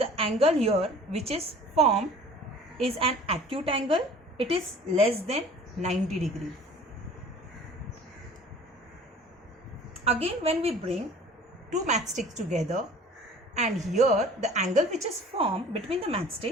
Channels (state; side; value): normal; both; correlation 0.46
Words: angle here which is formed is an acute angle, it is less than 90 degree. Again, when we bring two matchsticks together and here the angle which is formed between the